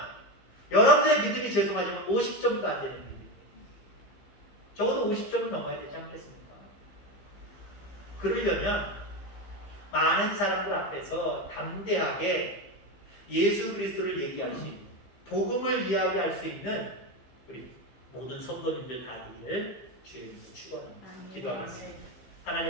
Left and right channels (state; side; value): late; right; 15 ms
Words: 여러분들의 믿음이 죄송하지만 50점도 안 되는 믿음. 적어도 50점은 넘어야 되지 않겠습니까? 그러려면 많은 사람들 앞에서 담대하게 예수 그리스도를 얘기할 수 있는, 복음을 이야기할 수 있는 우리 모든 성도님들 다 되기를 주의 이름으로 축원합니다. 기도하겠습니다.